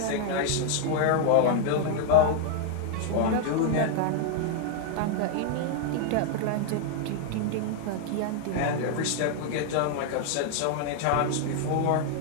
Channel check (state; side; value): different; both; correlation 0.00